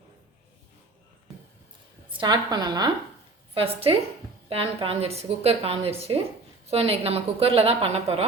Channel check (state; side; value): quieter; left; 3.5 dB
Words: ஃபஸ்ட்டு பேன் காஞ்சிருச்சு, குக்கர் காஞ்சிருச்சு. ஸோ இன்றைக்கி நம்ம குக்கரில் தான் பண்ண